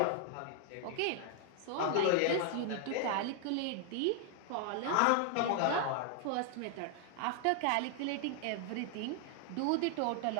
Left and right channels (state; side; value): different; both; correlation 0.00